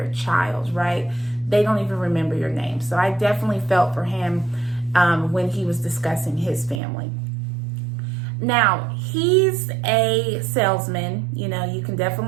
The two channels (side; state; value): left; drops out; at 6.8 s